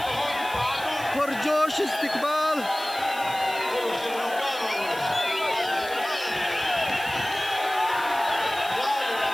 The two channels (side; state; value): right; noise; hiss, 15 dB below the sound